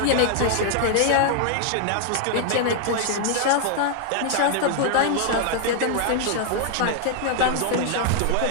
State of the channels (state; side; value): different; both; correlation 0.00